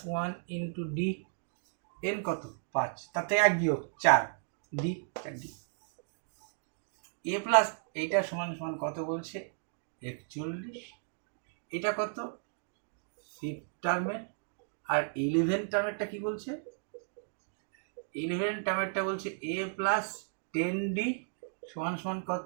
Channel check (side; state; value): left; silent; digital silence